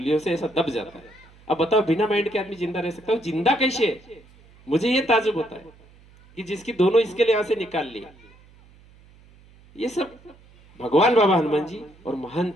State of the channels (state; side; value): noise; right; hum, 26 dB below the sound